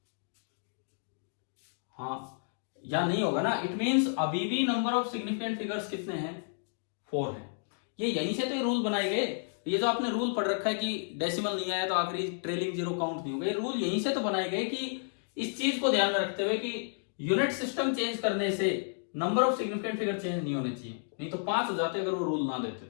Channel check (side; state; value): right; silent; digital silence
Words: हाँ या नहीं होगा ना, इट मींस अभी भी नंबर ऑफ सिग्निफिकेंट फिगर्स कितने हैं, 4 हैं। ये यहीं से तो ये रूल बनाए गए, ये जो आपने रूल पढ़ रखा है कि डेसिमल नहीं आया तो आखिरी ट्रेलिंग जीरो काउंट नहीं होगा, ये रूल यहीं से तो बनाए गए कि इस चीज को ध्यान में रखते हुए कि यूनिट सिस्टम चेंज करने से number of significant figure change नहीं होने चाहिए, नहीं तो 5 हो जाते अगर वो रूल ना देते